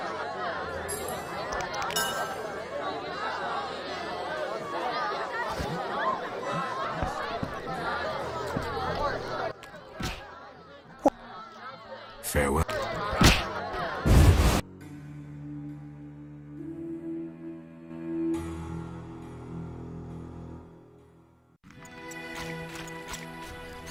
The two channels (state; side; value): identical; both; correlation 1.00